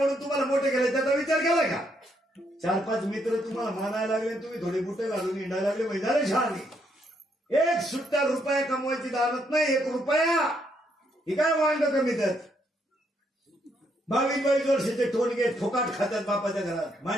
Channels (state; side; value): normal; both; correlation 0.74